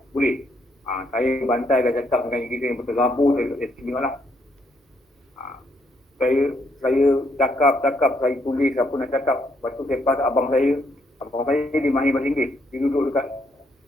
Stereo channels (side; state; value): both; normal; correlation 0.73